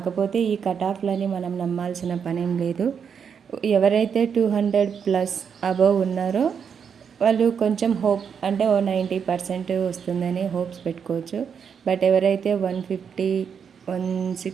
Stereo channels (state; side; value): quieter; left; 7.0 dB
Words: ఈ కట్ ఆఫ్లని మనం నమ్మాల్సిన పనేం లేదు. ఎవరైతే 200+ అబవ్ ఉన్నారో వాళ్ళు కొంచెం హోప్, అంటే 90% వస్తుందని హోప్స్ పెట్టుకోవచ్చు. బట్ ఎవరైతే 150,